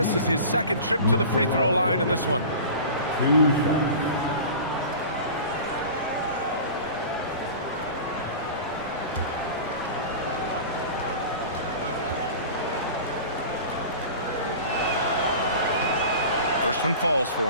is his second trip to the free throw line in this one. 2 shots. First one falls for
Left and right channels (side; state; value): both; inverted; correlation -0.36